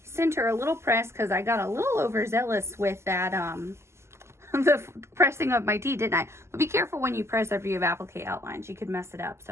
center a little press because I got a little overzealous with that, the pressing of my tee, didn't I? But be careful when you press after you have applique outlines. You could mess it up,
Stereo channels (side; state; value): left; late; 0.13 ms